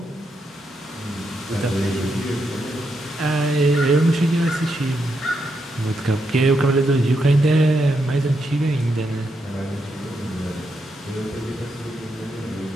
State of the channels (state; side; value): normal; both; correlation 0.82